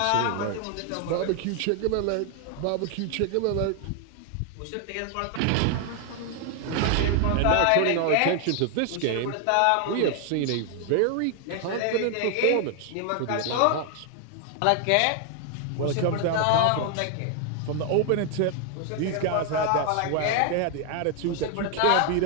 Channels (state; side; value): different; both; correlation 0.00